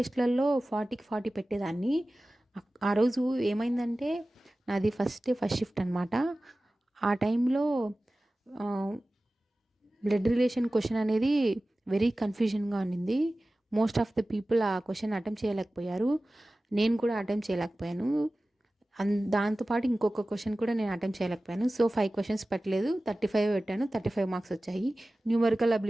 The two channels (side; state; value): both; normal; correlation 0.96